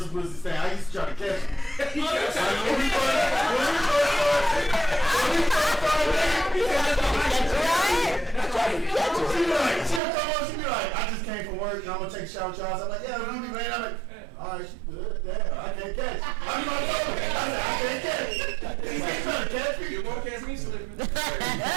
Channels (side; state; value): left; drops out; at 10.0 s